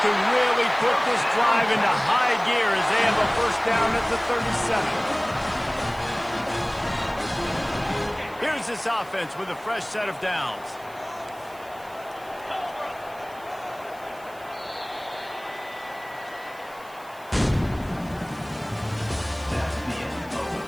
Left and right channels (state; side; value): noise; right; hiss, 23 dB below the sound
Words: could really put this drive into high gear as they have a first down at the 37. Here's this offense with a fresh set of downs.